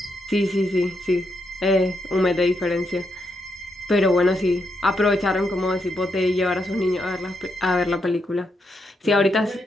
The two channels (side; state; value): both; normal; correlation 0.81